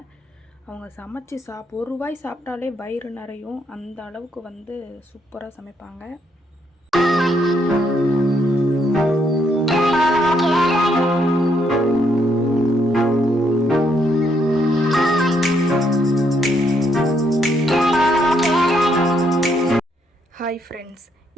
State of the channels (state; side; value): normal; both; correlation 0.73